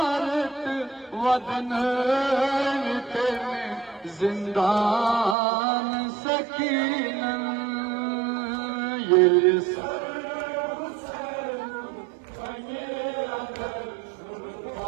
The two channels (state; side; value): drops out; left; at 5.4 s